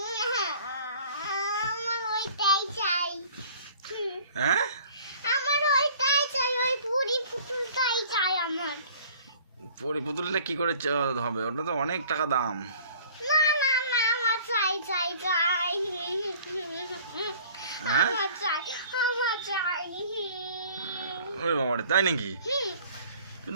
আমার ওইটাই চাই। হ্যাঁ, আমার ওইটাই চাই, ওই পরি পুতুলটাই চাই আমার। পরি পুতুলটা কি করে হবে? ওটা তো অনেক টাকা দাম। না না না, আমার চাই চাই চাই, হ্যাঁ, আমার চাই, আমার চাই। ওরে বাবারে, তাই নাকি?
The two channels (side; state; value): both; inverted; correlation -0.50